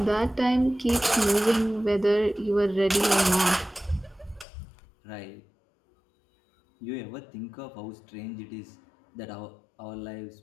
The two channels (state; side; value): drops out; right; at 4.5 s